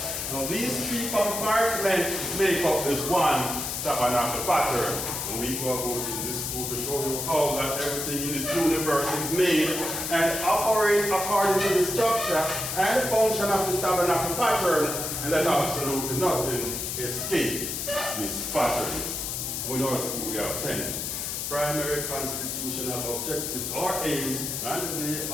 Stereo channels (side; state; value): left; noise; hiss, 3 dB below the sound